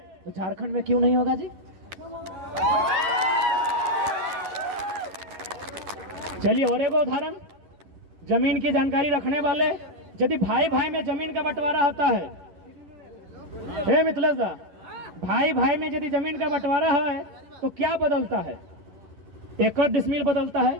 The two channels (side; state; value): left; late; 11 ms